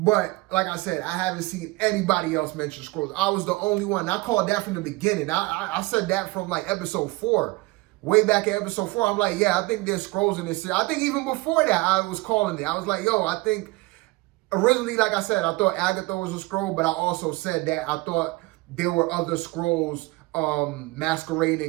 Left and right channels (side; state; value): left; quieter; 22.3 dB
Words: like I said, I haven't seen anybody else mention Skrulls. I was the only one. I called that from the beginning. I said that from like episode 4. Way back in episode 4, I'm like, yeah, I think there's Skrulls in this series. I think even before that, I was calling it. I was like, yo, I think... Originally, like I said, I thought Agatha was a Skrull, but I also said that I thought there were other Skrulls